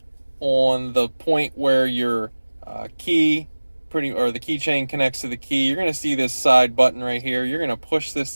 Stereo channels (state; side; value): inverted; both; correlation -1.00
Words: on the point where your key or the keychain connects to the key. You're going to see this side button right here. You're going to push